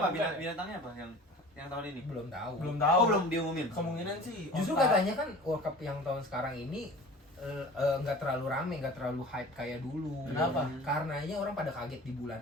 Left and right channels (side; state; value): both; normal; correlation 0.41